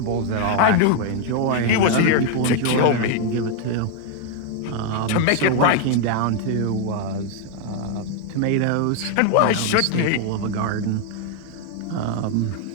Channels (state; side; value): different; both; correlation 0.01